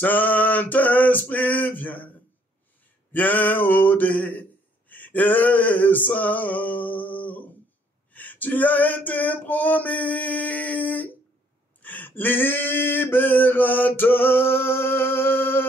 viens, viens au descends. Tu as été promis,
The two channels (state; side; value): normal; both; correlation 0.65